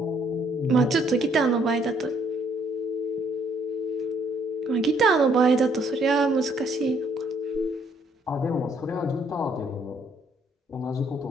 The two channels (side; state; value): both; normal; correlation 0.67